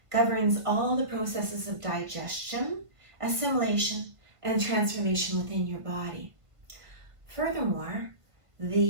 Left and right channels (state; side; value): late; left; 1.5 ms